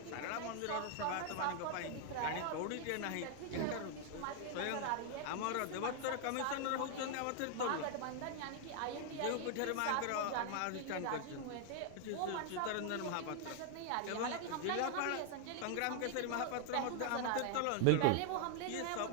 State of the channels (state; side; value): different; both; correlation 0.00